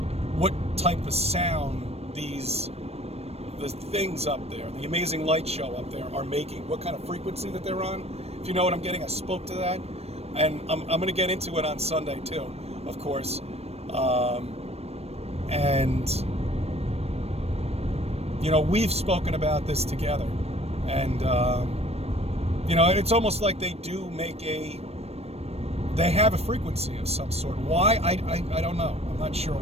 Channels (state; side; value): late; left; 0.30 ms